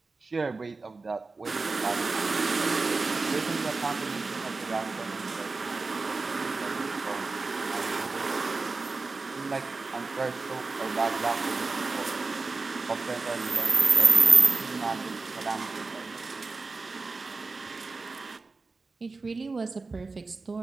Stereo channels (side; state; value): left; quieter; 3.9 dB